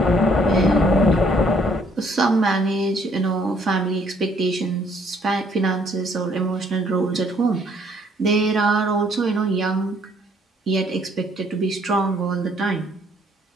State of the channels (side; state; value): both; normal; correlation 0.64